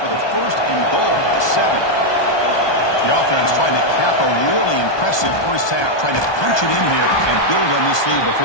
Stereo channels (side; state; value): right; late; 1.2 ms